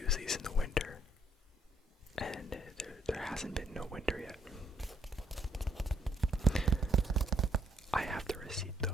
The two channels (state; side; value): normal; both; correlation 0.69